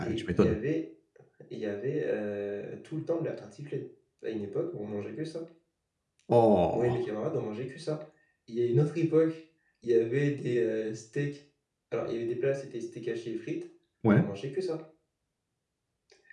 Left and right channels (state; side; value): identical; both; correlation 1.00